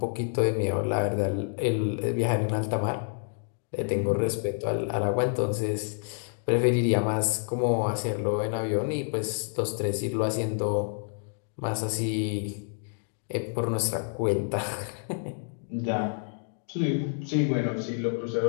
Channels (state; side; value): silent; right; digital silence